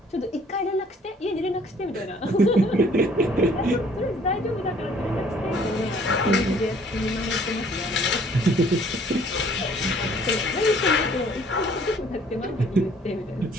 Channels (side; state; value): both; normal; correlation 0.58